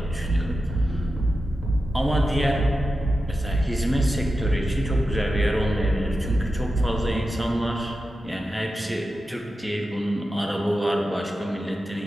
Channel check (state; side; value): normal; both; correlation 0.91